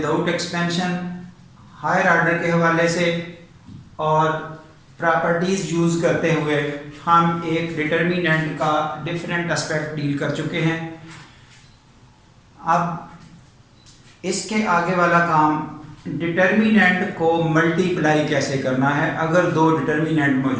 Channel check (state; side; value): identical; both; correlation 1.00